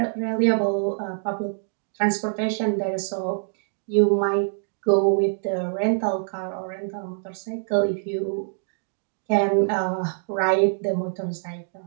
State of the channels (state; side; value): silent; left; digital silence